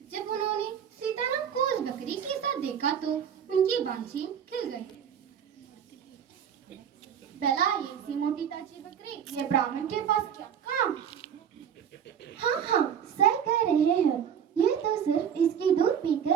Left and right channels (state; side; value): quieter; left; 8.3 dB